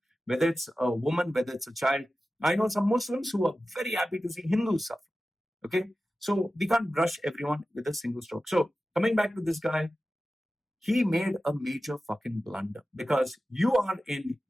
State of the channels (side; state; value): both; normal; correlation 0.94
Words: Whether it's a woman, whether it's a child. I know some Muslims who are very happy to see Hindus suffer. Okay? So we can't brush everyone with a single stroke. So coming back to this guy, he made a major fucking blunder because you are in